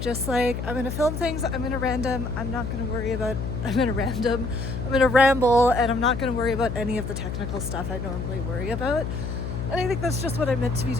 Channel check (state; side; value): noise; left; hum, 5 dB below the sound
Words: just like, I'm gonna film things, I'm gonna ramble, and I'm not gonna worry about any of the technical stuff I normally worry about. And I think that's just what I'm meant to be